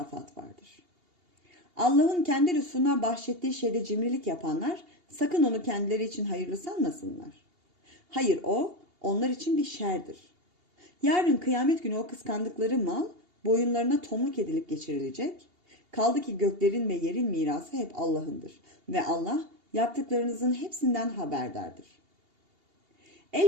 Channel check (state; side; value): late; left; 2.8 ms